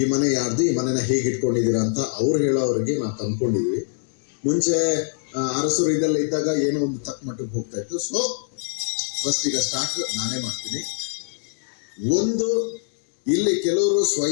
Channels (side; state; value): right; silent; digital silence